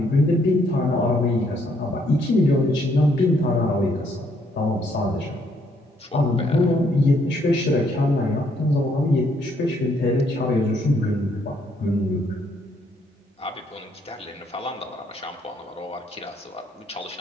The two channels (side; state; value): both; normal; correlation 0.69